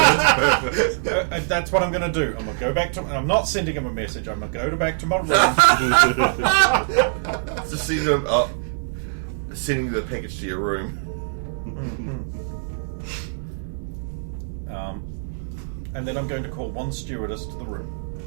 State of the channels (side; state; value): left; silent; digital silence